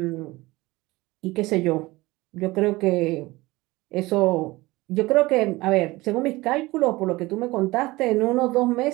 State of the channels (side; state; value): left; quieter; 20.5 dB